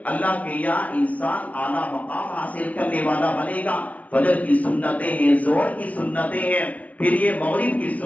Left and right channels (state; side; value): late; right; 0.069 ms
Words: اللہ کے یہاں انسان اعلیٰ مقام حاصل کرنے والا بنے گا. فجر کی سنتیں ہیں، ظہر کی سنتیں ہیں، پھر یہ مغرب کی